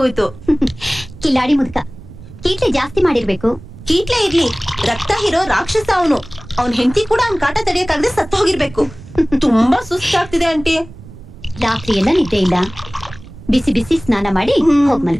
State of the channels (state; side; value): noise; right; rumble, 18 dB below the sound